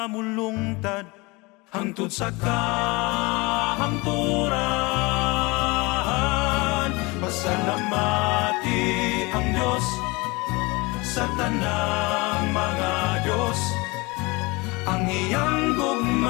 mulungtad, hangtod sa kahangturan. Pasalamati ang Diyos sa tanang mga Diyos, ang iyang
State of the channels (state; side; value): quieter; right; 25.1 dB